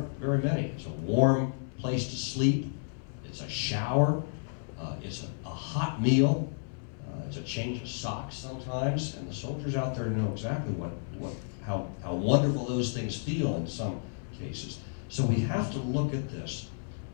very many. It's a warm place to sleep, it's a shower, it's a hot meal, it's a change of socks sometimes, and the soldiers out there know exactly how wonderful those things feel in some cases. So we have to look at this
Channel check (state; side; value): silent; right; 57 dB below the other